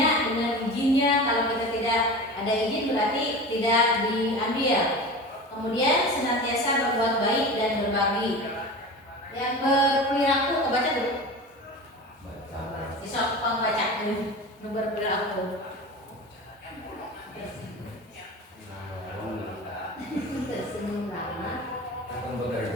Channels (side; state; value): both; normal; correlation 0.32